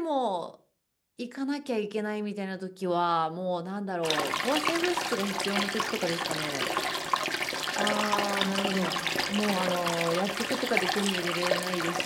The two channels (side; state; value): both; identical; correlation 1.00